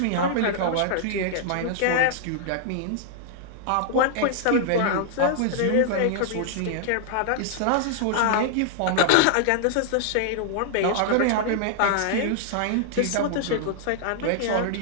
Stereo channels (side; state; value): both; different; correlation -0.01